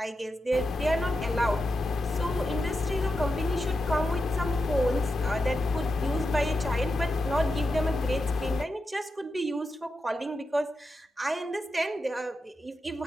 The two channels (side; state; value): both; normal; correlation 0.88